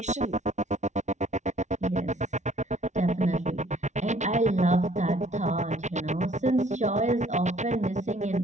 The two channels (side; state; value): left; late; 0.34 ms